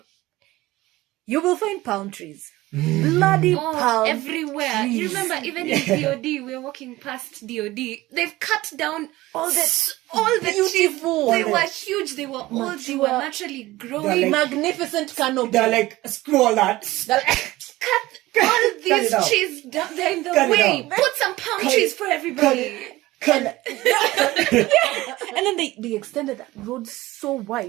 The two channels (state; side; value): quieter; left; 18.1 dB